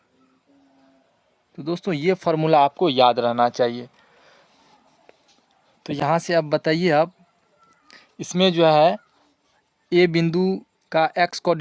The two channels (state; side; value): identical; both; correlation 1.00